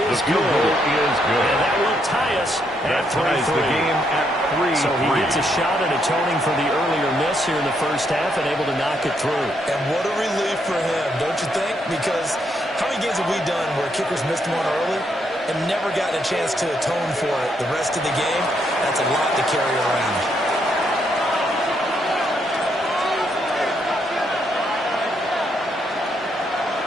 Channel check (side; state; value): both; normal; correlation 0.76